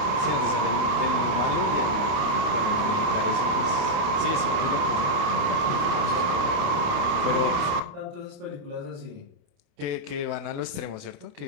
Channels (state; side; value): late; left; 29 ms